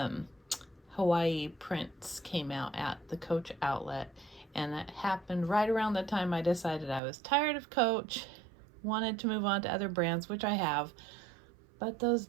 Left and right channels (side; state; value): left; drops out; at 7.0 s